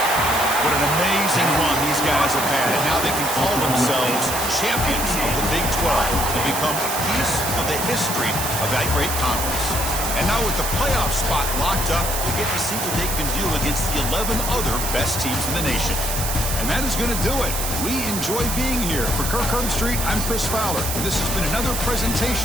What an amazing run these guys have had. And now they can call themselves champions of the Big 12 and become a piece of the history of that great conference. And now with the playoff spot locked up, we'll get to see what they can do against the 11 other best teams in the nation. And that is going to do it. We enjoy being here. For Kirk Herbstreit, I'm Chris Fowler. And this has been another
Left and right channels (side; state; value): right; noise; hiss, 3 dB below the sound